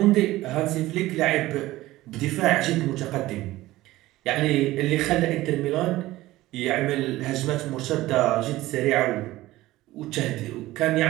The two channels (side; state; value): left; quieter; 17.1 dB